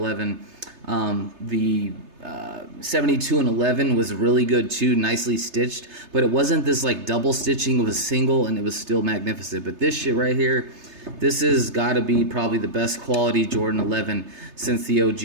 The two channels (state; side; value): late; left; 3.3 ms